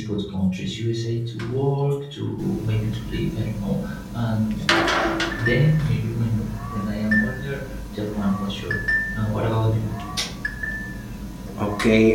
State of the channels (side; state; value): both; identical; correlation 1.00